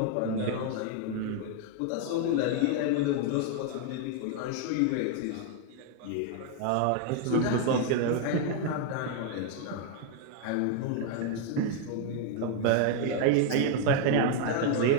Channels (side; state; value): both; different; correlation 0.00